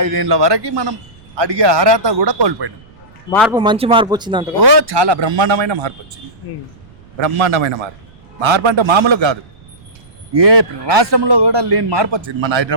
5 ఏళ్ళ వరకు మనం అడిగే అర్హత కూడా కోల్పోయినాం. మార్పు మంచి మార్పు వచ్చిందంట. ఓ చాలా బ్రహ్మాండమైన మార్పు వచ్చింది. బ్రహ్మాండమైన మార్పు. మార్పు అంటే మామూలు కాదు. ఏ రాష్ట్రంలో కూడా లేని మార్పు వచ్చింది మన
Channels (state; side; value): noise; right; rumble, 26 dB below the sound